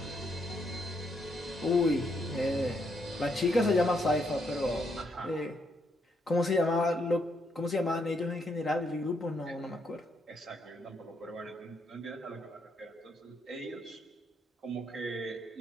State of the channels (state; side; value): normal; both; correlation 0.75